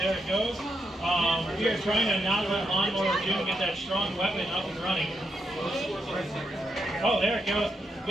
it goes. We are trying to not let Lawnmower of Doom get that strong weapon up and running. Oh, there it goes.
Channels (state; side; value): normal; both; correlation 0.81